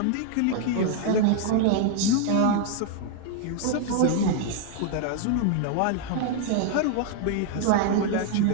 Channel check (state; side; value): different; both; correlation 0.00